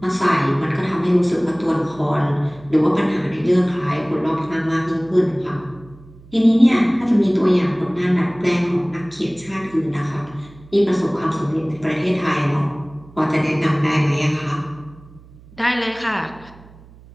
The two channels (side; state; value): right; noise; hum, 23 dB below the sound